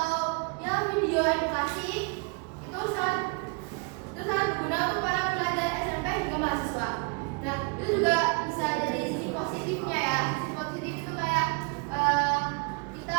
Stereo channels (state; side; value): quieter; left; 32.1 dB